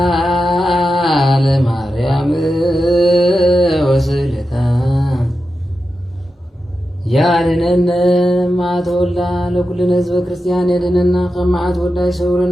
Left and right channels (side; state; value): both; normal; correlation 0.90